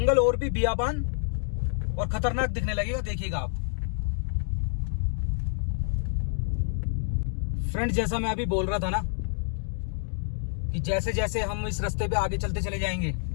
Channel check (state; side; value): silent; right; digital silence